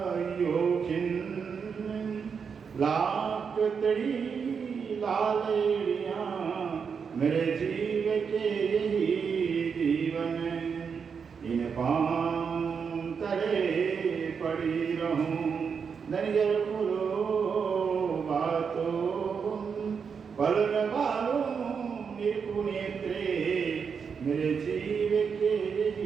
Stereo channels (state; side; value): quieter; left; 6.2 dB